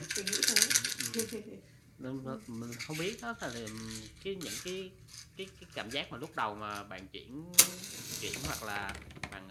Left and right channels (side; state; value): both; identical; correlation 1.00